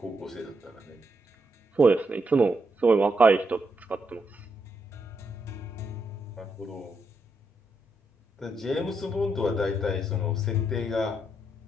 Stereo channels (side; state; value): both; normal; correlation 0.80